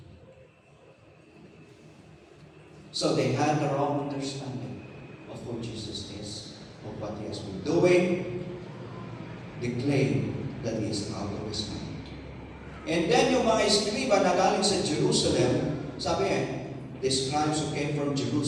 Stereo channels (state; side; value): identical; both; correlation 1.00